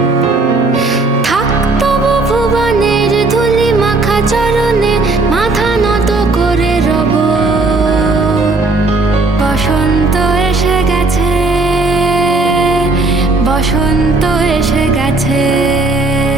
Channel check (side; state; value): left; quieter; 3.3 dB